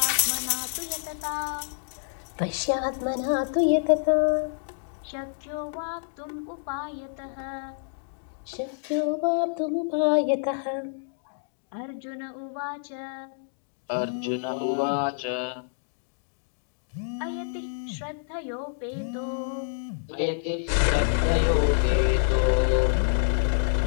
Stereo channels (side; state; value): right; silent; digital silence